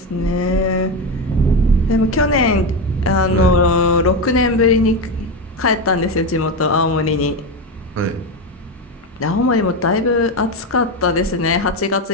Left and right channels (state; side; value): normal; both; correlation 0.14